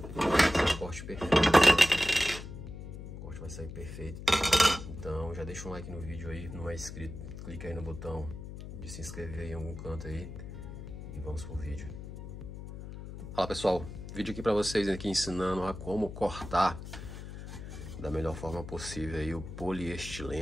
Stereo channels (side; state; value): left; noise; hum, 10 dB below the sound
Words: corte perfeito. O corte vai sair perfeito. Então já deixa um like no vídeo aí, não é inscrito, clica aí no botão de se inscrever em algum canto aí e vamos pro vídeo. Fala pessoal, vídeo aqui para vocês aqui ensinando a como cortar da melhor forma possível aí o